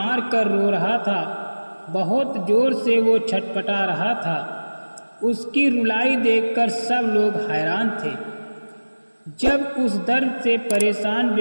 कर रो रहा था। बहुत जोर से वो छटपटा रहा था। उसकी रुलाई देखकर सब लोग हैरान थे। जब उस दर्द से परेशान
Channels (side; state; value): both; inverted; correlation -1.00